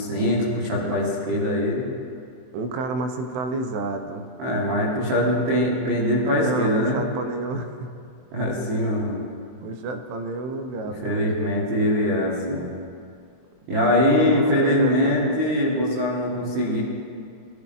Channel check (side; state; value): left; late; 23 ms